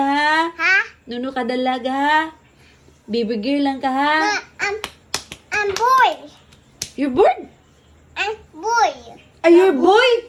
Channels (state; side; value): identical; both; correlation 1.00